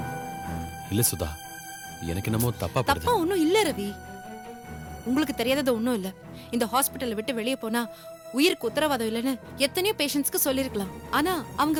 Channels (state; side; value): identical; both; correlation 1.00